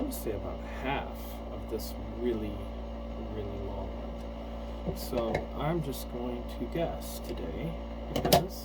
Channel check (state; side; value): identical; both; correlation 1.00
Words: to say about half of this really, really long one. So I'm just going to guess today